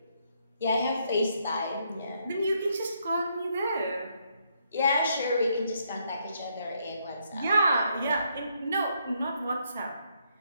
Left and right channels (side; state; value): both; inverted; correlation -0.74